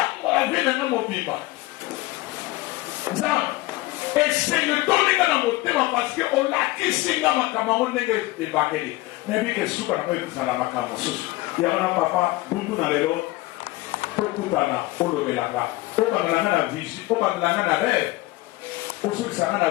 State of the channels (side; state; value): right; quieter; 19.6 dB